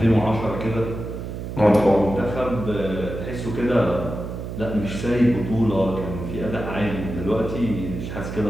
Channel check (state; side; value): noise; right; hum, 7 dB below the sound